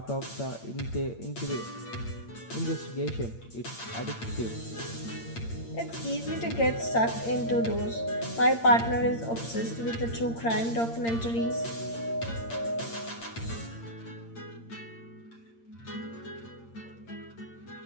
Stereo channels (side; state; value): right; late; 8.7 ms